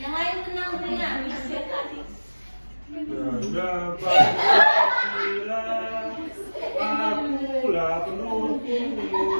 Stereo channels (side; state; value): both; inverted; correlation -1.00